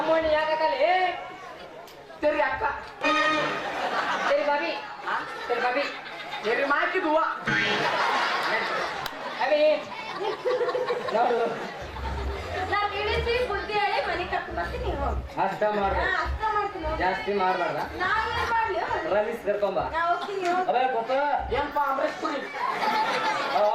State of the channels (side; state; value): both; identical; correlation 1.00